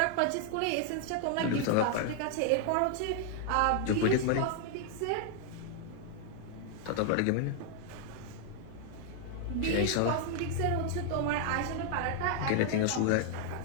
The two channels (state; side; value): different; both; correlation 0.00